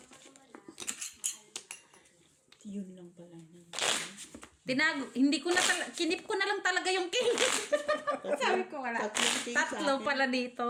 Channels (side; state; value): both; identical; correlation 1.00